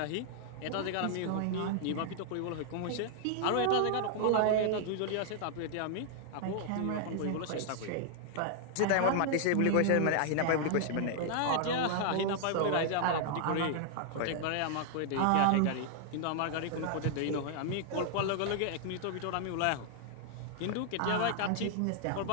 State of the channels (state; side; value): different; both; correlation -0.01